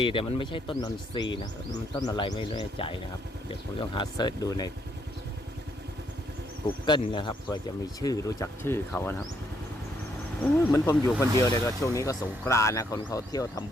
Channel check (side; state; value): both; normal; correlation 0.73